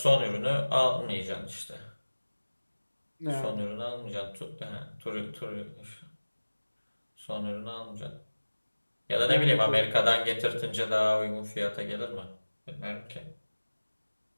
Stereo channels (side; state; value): both; inverted; correlation -1.00